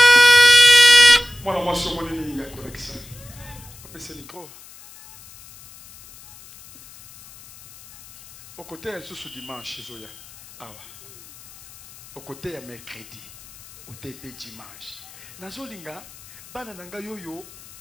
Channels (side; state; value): left; noise; hiss, 21 dB below the sound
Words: Moi, je suis mon ennemi, il y a correction. Après ce micro. Au côté, elle se dimanche, Zoya. Au côté, il y a mercredi. Au TP dimanche. Nazolinga, banananga yoyo,